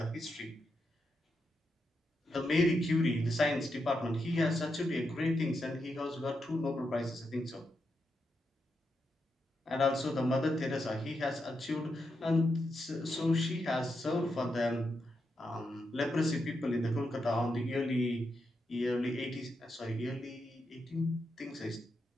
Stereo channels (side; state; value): both; normal; correlation 0.84